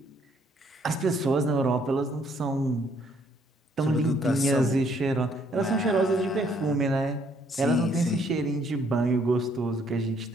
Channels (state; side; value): normal; both; correlation 0.67